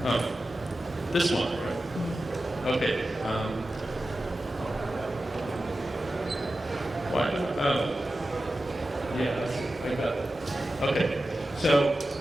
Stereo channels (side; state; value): both; normal; correlation 0.93